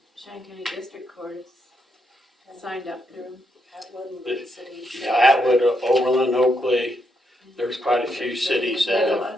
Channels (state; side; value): normal; both; correlation 0.79